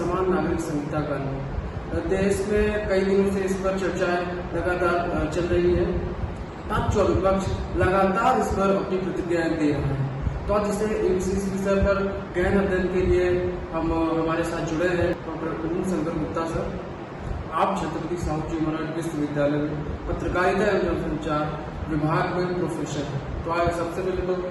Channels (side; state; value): both; identical; correlation 1.00